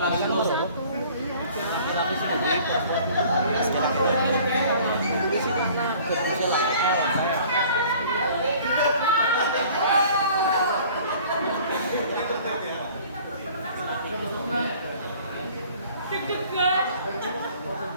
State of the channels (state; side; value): inverted; both; correlation -0.51